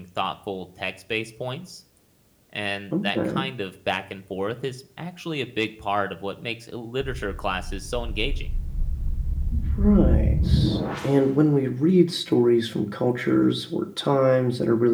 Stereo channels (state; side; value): identical; both; correlation 1.00